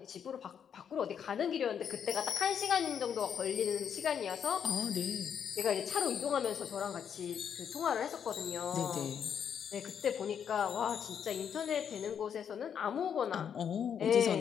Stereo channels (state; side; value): quieter; right; 8.0 dB